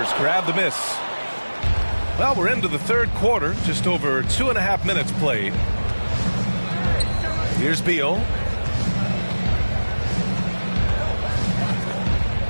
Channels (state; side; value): inverted; both; correlation -1.00